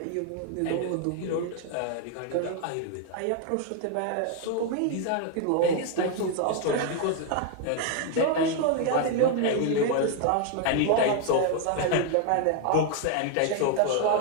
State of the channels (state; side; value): different; both; correlation 0.00